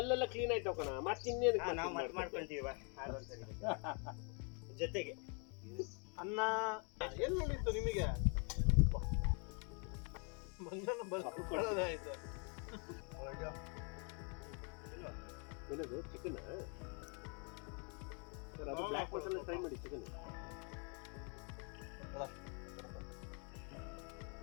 ಕ್ಲೀನ್ ಆಯ್ತು ಕಣ. ಮತ್ತೆ ಇನ್ನೇನು ನಾವು ಮತ್ತೆ ಮಾಡ್ಕೊಂತೀವಿ ಜೊತೆಗೆ ಅನ್ನ ಏನ್ ನೋಡಿತ್ತು ನಿಮಗೆ? ಮಂಗನ ಬರೋದಾಯ್ತು. ಏನದು ಚಿಕನ್? ಅದು ಬ್ಲ್ಯಾಕ್ ಮಸಾಲೆ ಫ್ರೈ ಮಾಡಿ ಚಿಕನ್.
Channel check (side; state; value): right; quieter; 37.3 dB